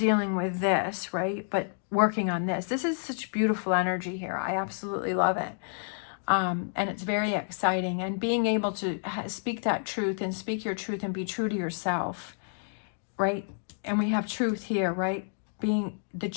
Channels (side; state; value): right; silent; digital silence